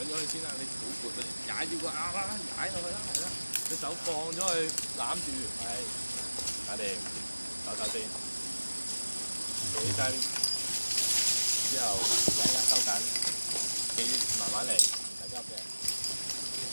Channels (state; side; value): inverted; both; correlation -1.00